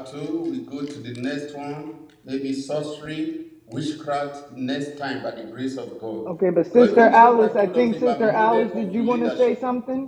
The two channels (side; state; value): both; identical; correlation 1.00